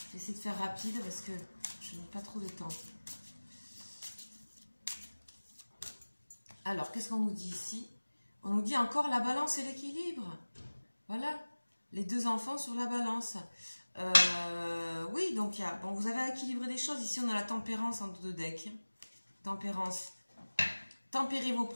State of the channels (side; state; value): both; inverted; correlation -1.00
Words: vais essayer de faire rapide parce que je n'ai pas trop de temps. Alors, qu'est-ce qu'on nous dit ici? On nous dit encore la balance et l'équilibre. Voilà, les deux enfants sur la balance. Oui, donc bon, vous avez équilibré des choses. Ici, on a la tempérance en deux decks. Tempérance. Tempérez vos